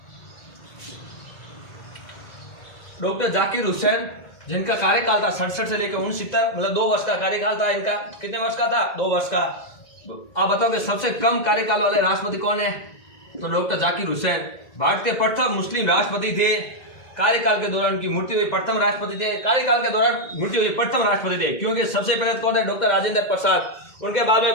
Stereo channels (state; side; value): late; right; 1.8 ms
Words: डॉक्टर जाकिर हुसैन, जिनका कार्यकाल था 67 से लेकर 69, मतलब 2 वर्ष का कार्यकाल था इनका। कितने वर्ष का था? 2 वर्ष का। आप बताओ कि सबसे कम कार्यकाल वाले राष्ट्रपति कौन है? तो डॉक्टर जाकिर हुसैन भारत के प्रथम मुस्लिम राष्ट्रपति थे। कार्यकाल के दौरान उनकी मृत्यु हुई, प्रथम राष्ट्रपति थे। कार्यकाल के दौरान मृत्यु हुई, प्रथम राष्ट्रपति थे। क्योंकि सबसे पहले कौन है? डॉक्टर राजेंद्र प्रसाद। उनके बाद में